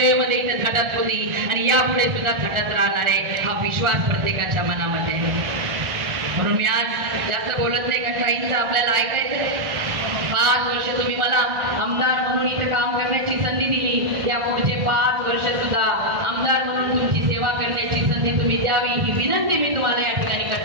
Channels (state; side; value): late; left; 1.5 ms